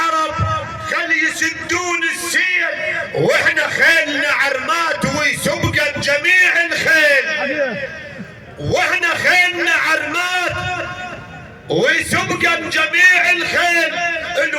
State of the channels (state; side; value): identical; both; correlation 1.00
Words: خلي يسدون السيل. واحنا خيلنا عرمات ويسبقن جميع الخيل. واحنا خيلنا عرمات ويسبقن جميع الخيل.